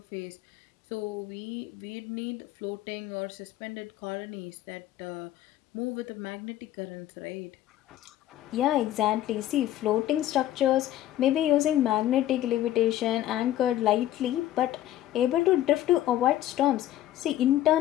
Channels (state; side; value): quieter; right; 13.3 dB